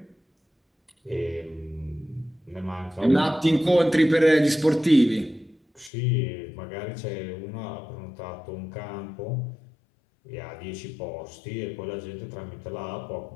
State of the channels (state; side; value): drops out; right; at 5.9 s